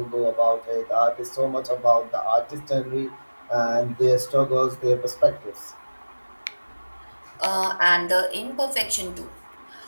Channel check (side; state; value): both; inverted; correlation -1.00